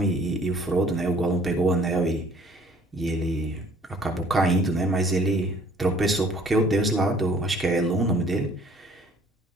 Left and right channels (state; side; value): normal; both; correlation 0.56